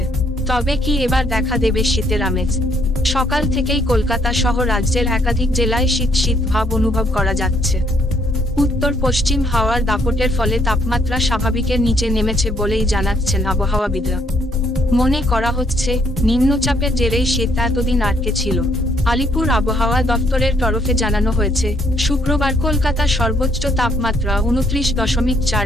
তবে কি এবার দেখা দেবে শীতের আমেজ? সকাল থেকেই কলকাতা সহ রাজ্যের একাধিক জেলায় শীত শীত ভাব অনুভব করা যাচ্ছে। উত্তর পশ্চিম হাওয়ার দাপটের ফলে তাপমাত্রা স্বাভাবিকের নিচে নেমেছে বলেই জানাচ্ছেন আবহাওয়াবিদরা। মনে করা হচ্ছে, নিম্নচাপের জেরেই শীত এতদিন আটকে ছিল। আলিপুর আবহাওয়া দফতরের তরফে জানানো হয়েছে, শুক্রবার কলকাতার সর্বোচ্চ তাপমাত্রা 29.4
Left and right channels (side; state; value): both; normal; correlation 0.69